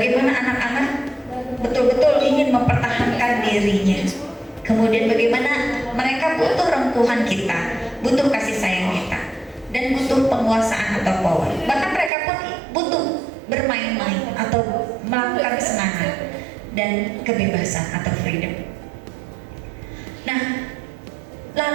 anak-anak betul-betul ingin mempertahankan dirinya. Kemudian bagaimana mereka butuh rengkuhan kita, butuh kasih sayang kita, dan butuh penguasaan atau power. Bahkan mereka pun butuh bermain-main atau melakukan kesenangan dan kebebasan atau freedom. Nah,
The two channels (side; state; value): left; drops out; at 12.1 s